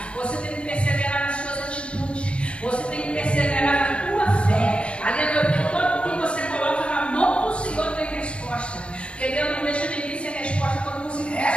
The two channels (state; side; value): late; right; 0.058 ms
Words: Você tem que perseverar nas suas atitudes. Você tem que perseverar na tua fé. Aleluia, porque todo que você coloca na mão do Senhor tem resposta. Porque Deus não deixa ninguém sem resposta quando você